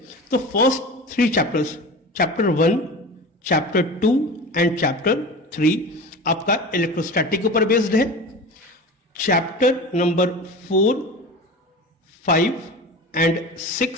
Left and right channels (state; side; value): normal; both; correlation 0.32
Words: तो first 3 chapters, chapter 1, chapter 2 and chapter 3 आपका इलेक्ट्रोस्टैटिक के ऊपर बेस्ड है। चैप्टर नंबर 4, 5 एंड